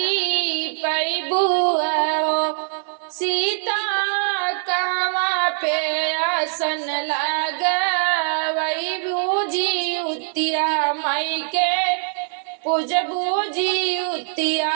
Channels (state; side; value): silent; left; digital silence